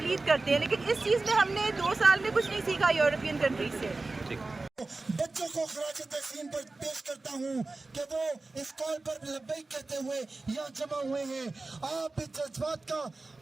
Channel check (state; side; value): quieter; left; 3.4 dB